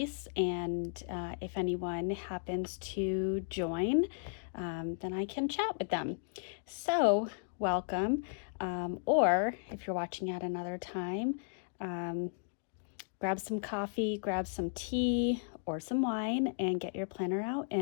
And if anyone happens to join, then I can chat with them. So welcome. Or if you're watching at another time, grab some coffee, grab some tea or some wine, and get your planner out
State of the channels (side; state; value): right; silent; digital silence